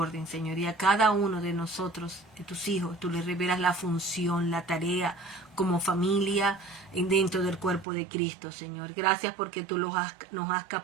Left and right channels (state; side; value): drops out; left; at 7.9 s